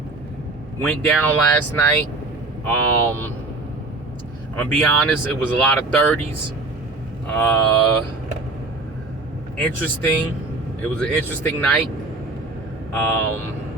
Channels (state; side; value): quieter; left; 3.2 dB